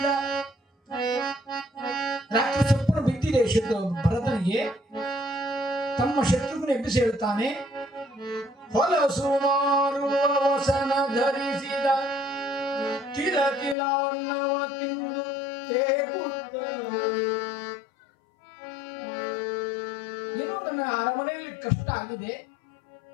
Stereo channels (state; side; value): drops out; right; at 13.8 s